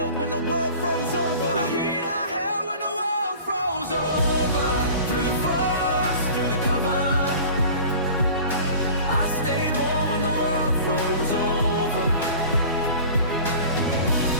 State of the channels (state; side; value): inverted; both; correlation -0.41